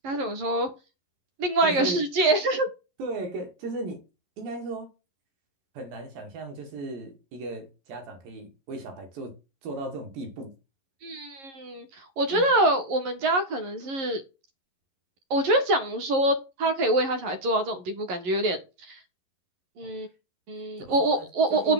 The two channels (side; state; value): left; late; 11 ms